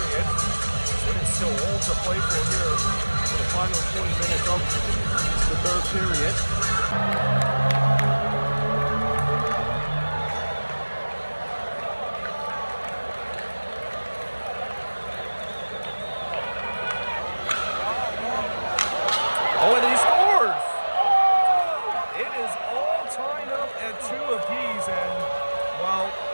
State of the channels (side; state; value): both; inverted; correlation -1.00